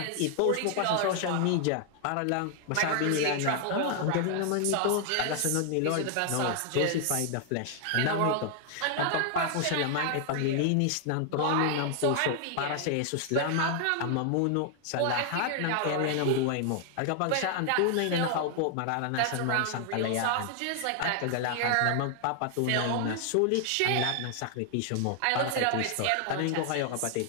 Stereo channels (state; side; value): different; both; correlation 0.00